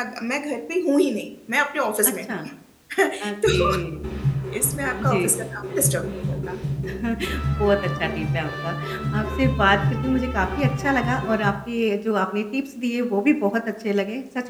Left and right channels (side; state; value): both; identical; correlation 1.00